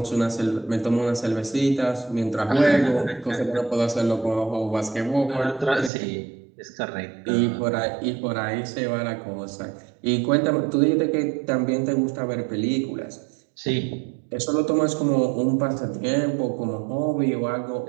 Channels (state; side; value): drops out; left; at 5.9 s